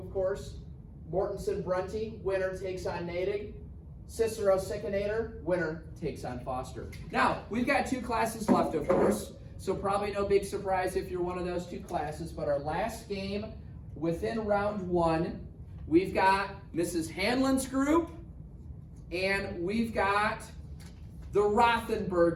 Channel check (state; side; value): identical; both; correlation 1.00